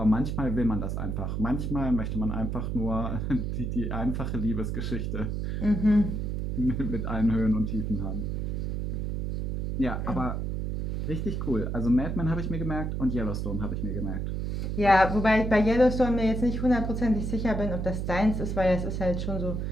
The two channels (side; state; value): right; noise; hum, 2 dB below the sound